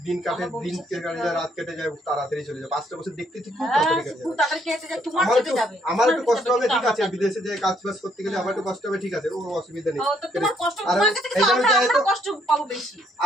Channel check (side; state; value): both; normal; correlation 0.69